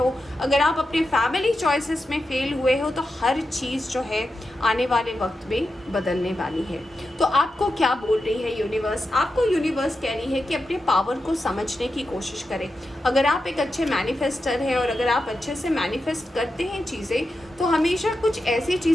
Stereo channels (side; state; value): both; normal; correlation 0.89